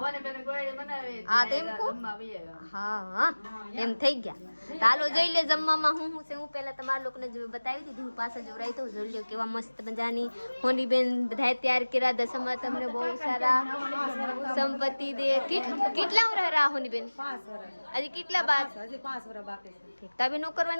હા તો એમ કહો. હા એમ થઈ ગયા. ચાલો જોઈ લે જમવામાં હું છે. હું પહેલા તમારા લોકોને બતાવી દીધું. હું પાછા જોડાઈ તો જોઈ લો કેવા મસ્ત મજાની હોની બેન બધા તૈયાર કર્યા. દસમા તમને બહુ સારા સંપત્તિ દે. કેટલા વર્ષ રહ્યા હોની બેન? હજી કેટલા બાદ? તબે નો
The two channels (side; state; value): both; inverted; correlation -1.00